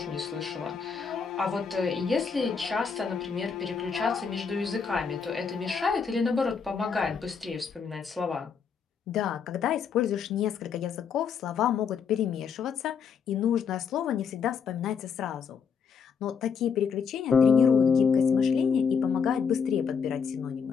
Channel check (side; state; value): right; quieter; 6.3 dB